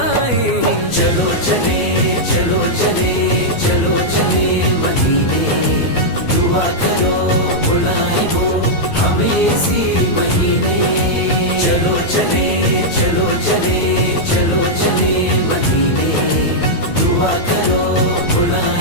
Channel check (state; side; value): late; right; 12 ms